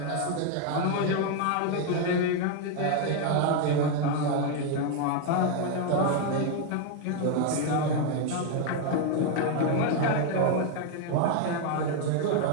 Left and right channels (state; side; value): different; both; correlation 0.01